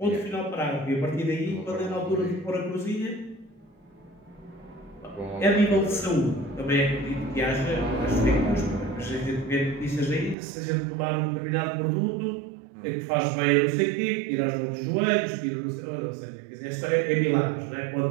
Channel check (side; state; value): left; drops out; at 10.4 s